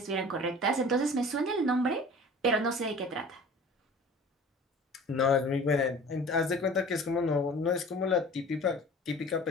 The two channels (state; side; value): normal; both; correlation 0.44